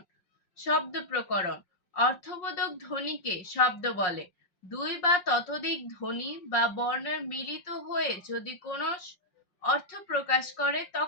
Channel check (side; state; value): right; late; 5.5 ms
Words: শব্দ প্রকরণ, অর্থবোধক ধ্বনিকে শব্দ বলে। 2 বা ততোধিক ধ্বনি বা বর্ণের মিলিত হয়ে যদি কোনো অর্থ প্রকাশ করে